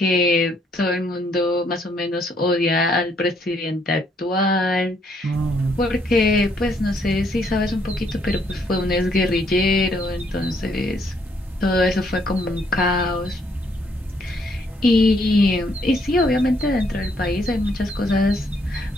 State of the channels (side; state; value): both; normal; correlation 0.70